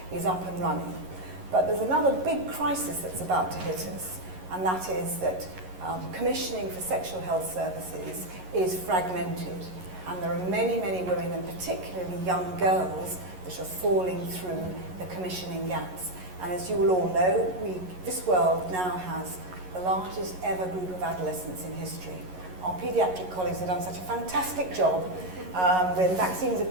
is up and running. But there's another big crisis that's about to hit us, and that is that commissioning for sexual health services is fragmented, and there are many, many women, and particularly young girls, that are falling through the commissioning gaps. And as you will all know, this world now has the largest ever group of adolescents in history. Our paediatric colleagues have done such a fantastic job when vaccines have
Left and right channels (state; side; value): late; left; 11 ms